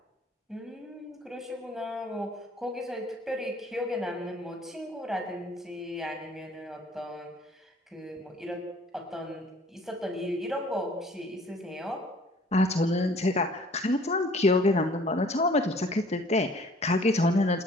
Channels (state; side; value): normal; both; correlation 0.54